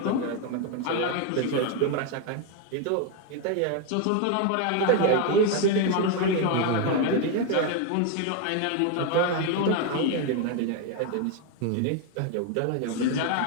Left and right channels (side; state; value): both; different; correlation 0.01